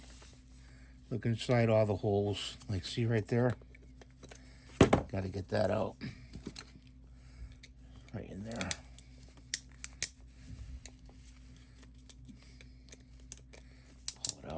Look inside all the holes. Like, see right there? Got to get that out. Right in there.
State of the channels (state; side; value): identical; both; correlation 1.00